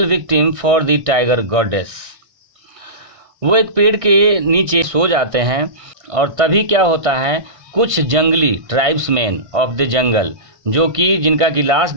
victim for the tiger goddess। वो एक पेड़ के नीचे सो जाते हैं और तभी क्या होता है, कुछ जंगली ट्राइब्समैन ऑफ द जंगल जो कि जिनका कि लास्ट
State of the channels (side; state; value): left; late; 1.6 ms